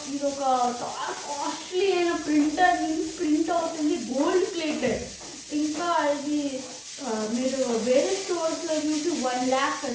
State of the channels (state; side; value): identical; both; correlation 1.00